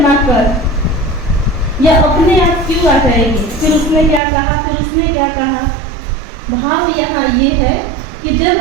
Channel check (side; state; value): left; drops out; at 4.2 s